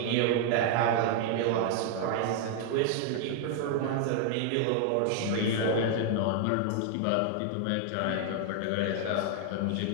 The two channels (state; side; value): different; both; correlation 0.00